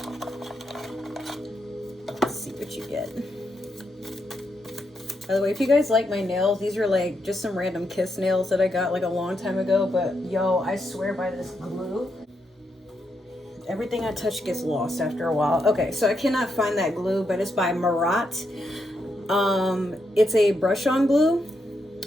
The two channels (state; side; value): normal; both; correlation 0.81